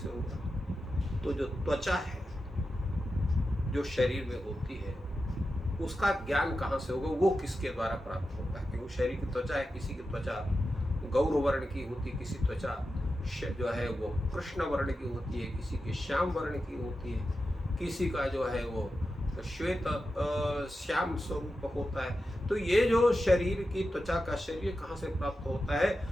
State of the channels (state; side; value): normal; both; correlation 0.91